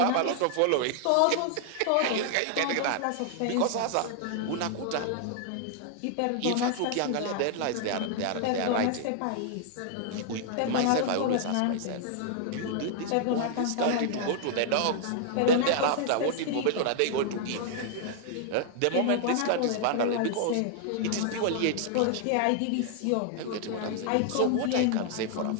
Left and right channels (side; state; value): both; different; correlation 0.00